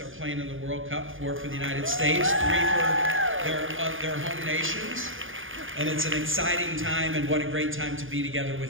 are playing in the World Cup, 4 for the United States, 3 for their home nations. And it's an exciting time, and what a great time to be together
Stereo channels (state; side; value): late; left; 0.58 ms